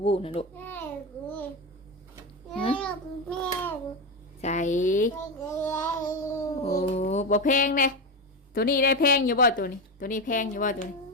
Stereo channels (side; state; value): both; normal; correlation 0.14